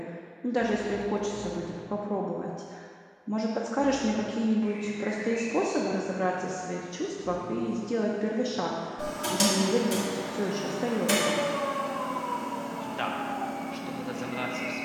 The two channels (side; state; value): both; identical; correlation 1.00